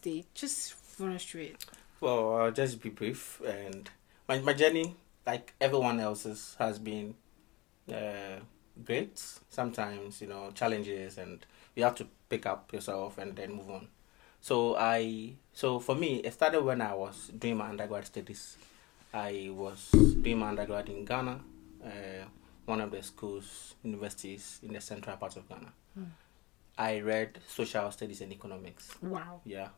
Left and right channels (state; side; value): quieter; right; 22.2 dB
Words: Just run us through it. Well, I'll just be brief. And my journey, like everyone else's, has been great. Sometimes, challenges, and you have to pick up yourself and then move on. So for me, it started when I was doing my undergrad studies. I was doing my undergrad in Ghana, one of the schools, universities in the central part of Ghana. I read social studies and economics. Wow. Yeah.